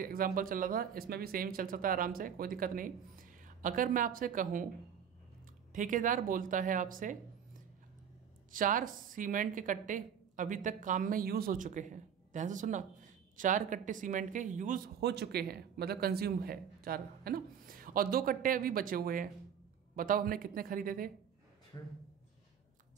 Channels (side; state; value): left; quieter; 8.1 dB